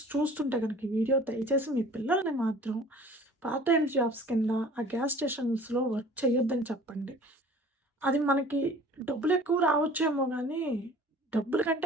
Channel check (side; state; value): both; normal; correlation 0.47